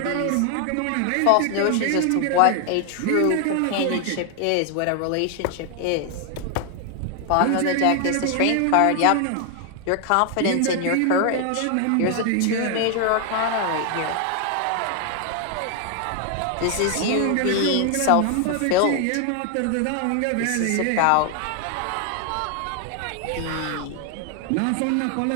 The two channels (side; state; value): both; different; correlation 0.00